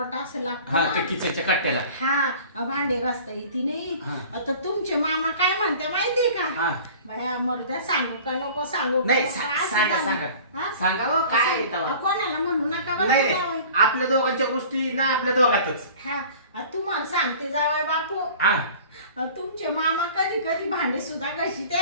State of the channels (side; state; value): both; inverted; correlation -0.44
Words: असं लागतं ते किचनच्या कट्ट्याला. हा भांडे घासता येते नाही. आता तुमचे मामा काय म्हणते माहितीये का? बाया मरुद्या सांगू का नको सांगू? नाही सांगा सांगा हो, काय कोणाला म्हणू नका बरं नाही जावई. आपल्या दोघांच्या गोष्टी ना आपल्या दोघातच. तुम्हाला सांगते जावाई बापू, तुमचे मामा कधी कधी भांडे सुद्धा घाशीत्या.